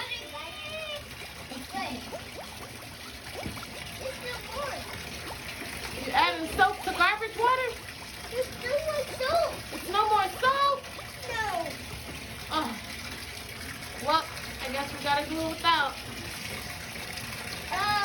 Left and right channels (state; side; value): identical; both; correlation 1.00